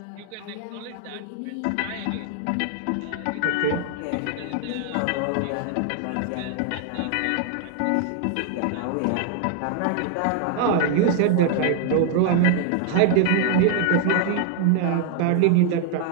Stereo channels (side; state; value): both; different; correlation 0.00